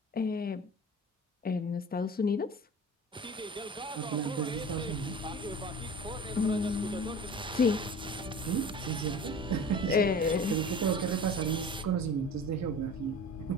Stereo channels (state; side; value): normal; both; correlation 0.40